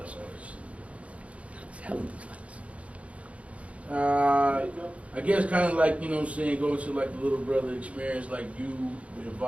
Hell of these I guess kind of like, going to like the little brother experience, like you were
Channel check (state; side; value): late; left; 0.064 ms